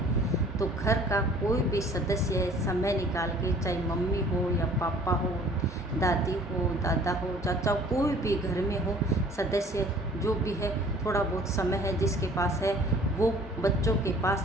तो घर का कोई भी सदस्य समय निकाल के, चाहे मम्मी हो या पापा हो, दादी हो, दादा हो, चाचा, कोई भी घर में हो सदस्य जो भी है, थोड़ा बहुत समय है जिसके पास है वो बच्चों के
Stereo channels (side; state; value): both; normal; correlation 0.52